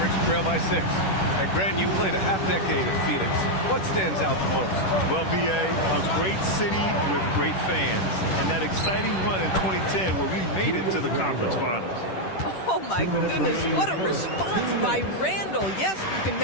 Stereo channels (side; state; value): right; late; 10 ms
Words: trail by 6. And Grant, you played a half-decade in Phoenix. What stands out the most? Well, B.A., a great city with great fans. And that exciting run in 2010 where we made it to the conference finals. Oh, my goodness. What a response by Randle. Yes, you can